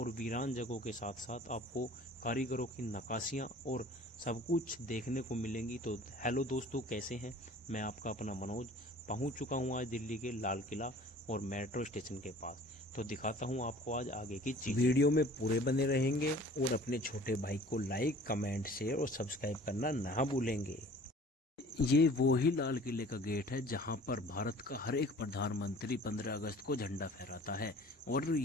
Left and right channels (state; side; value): normal; both; correlation 0.48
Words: वीरान जगहों के साथ साथ आपको कारीगरों की नक्काशियाँ और सब कुछ देखने को मिलेंगी। तो हेलो दोस्तों, कैसे हैं? मैं आपका अपना मनोज पहुंच चुका हूं आज दिल्ली के लाल किला और मेट्रो स्टेशन के पास। तो दिखाता हूं आपको आज आगे की चीज़। वीडियो में पूरे बने रहेंगे और अपने छोटे भाई को लाइक, कमेंट, शेयर और सब्सक्राइब करना ना भूलेंगे। ये वो ही लाल किले का गेट है जहां पर भारत का हर एक प्रधानमंत्री 15 अगस्त को झंडा फहराता है। और